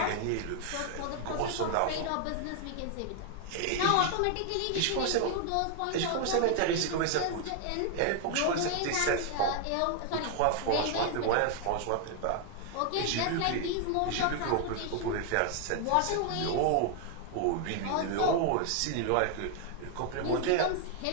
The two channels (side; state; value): both; different; correlation 0.00